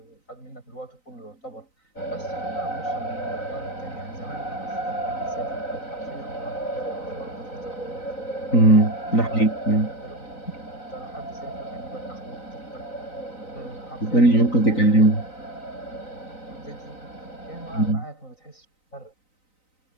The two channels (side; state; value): right; late; 3.9 ms